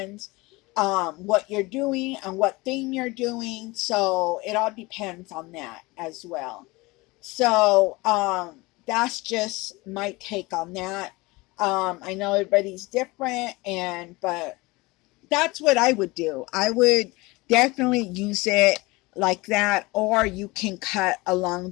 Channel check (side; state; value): right; quieter; 23.0 dB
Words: what you're doing and what theme you're doing. So it all depends on that as well. So that's just my take on that. I know everybody's different, but that's what I would do. I would definitely use it like that, or you can cut along